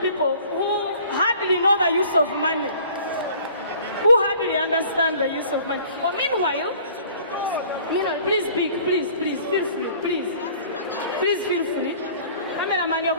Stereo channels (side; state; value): both; inverted; correlation -0.51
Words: people who hardly know the use of money. Who hardly understand the use of money. But meanwhile, please speak, please, feel free, please. Please feel free. Cameraman, you're